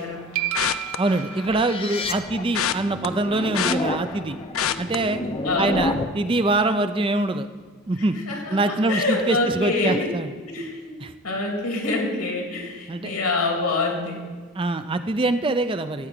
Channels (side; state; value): both; normal; correlation 0.40